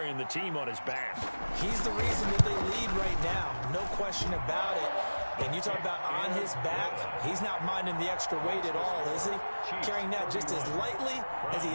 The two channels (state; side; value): inverted; both; correlation -1.00